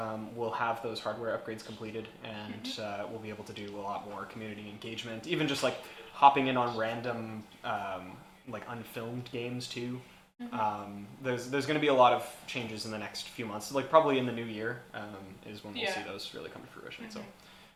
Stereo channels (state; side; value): identical; both; correlation 1.00